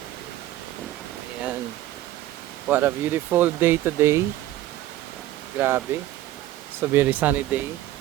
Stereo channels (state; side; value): quieter; left; 14.5 dB